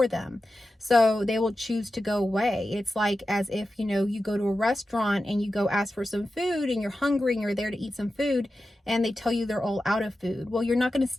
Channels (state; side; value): normal; both; correlation 0.92